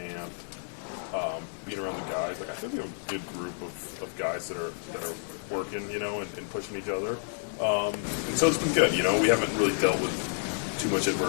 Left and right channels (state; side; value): silent; right; 58 dB below the other